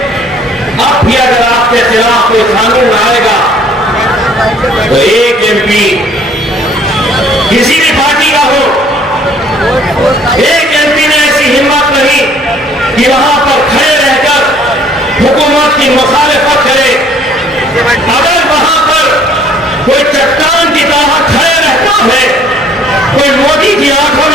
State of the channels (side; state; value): both; normal; correlation 0.57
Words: अब भी अगर आपके खिलाफ कोई कानून आएगा तो एक एमपी किसी भी पार्टी का हो, एक एमपी ने ऐसी हिम्मत नहीं कि वहां पर खड़े रहकर हुकूमत की मुखालिफत करे। अगर वहां पर कोई चट्टान की तरह खड़े रहता है, कोई मोदी की आंखों